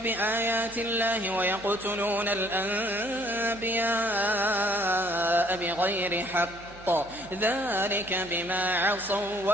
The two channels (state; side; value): noise; right; hum, 20 dB below the sound